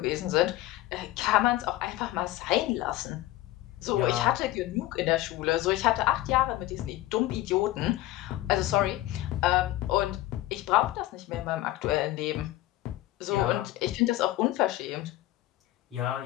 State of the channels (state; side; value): quieter; right; 16.0 dB